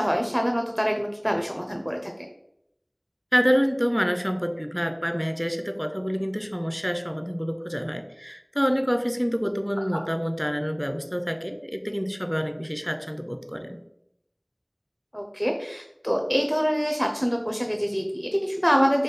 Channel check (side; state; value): both; identical; correlation 1.00